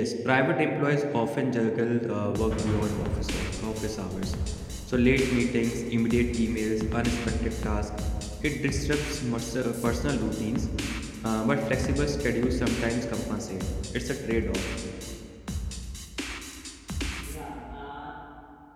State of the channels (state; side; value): identical; both; correlation 1.00